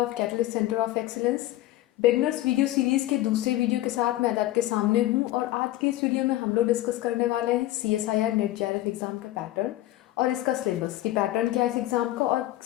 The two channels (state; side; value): quieter; right; 15.6 dB